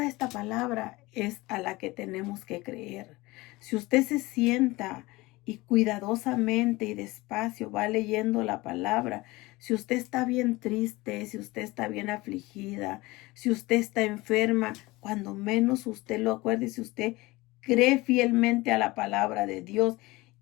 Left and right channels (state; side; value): quieter; right; 21.3 dB